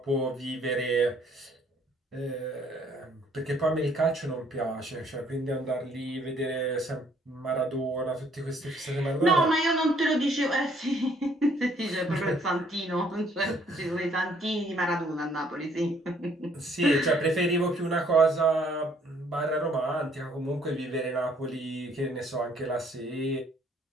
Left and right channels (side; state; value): both; normal; correlation 0.63